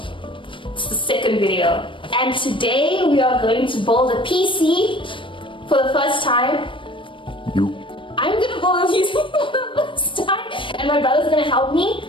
It's the second video. And today we are going to build a PC for the first time. I'm gonna build a PC for the first time and my brother's gonna help me.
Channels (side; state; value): right; late; 0.25 ms